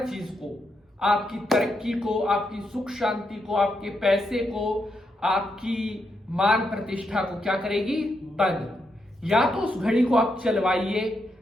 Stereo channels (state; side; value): normal; both; correlation 0.82